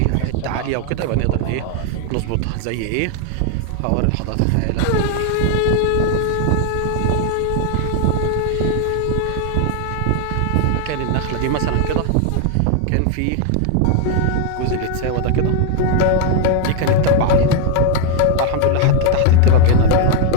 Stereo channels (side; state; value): both; different; correlation 0.00